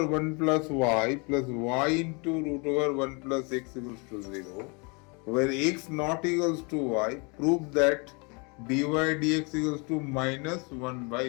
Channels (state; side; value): quieter; right; 31.9 dB